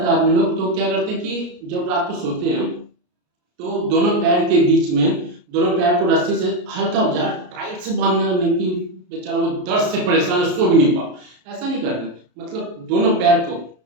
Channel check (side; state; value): left; late; 33 ms